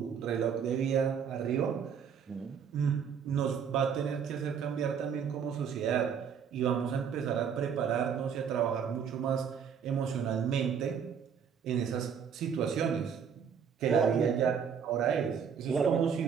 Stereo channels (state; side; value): quieter; left; 7.2 dB